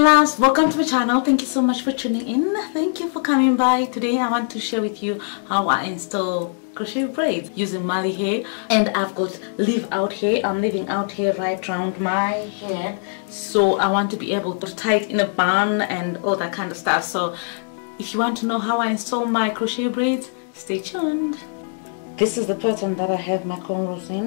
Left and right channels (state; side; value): silent; right; digital silence